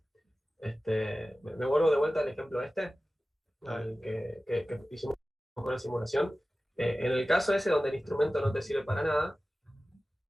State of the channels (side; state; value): both; normal; correlation 0.96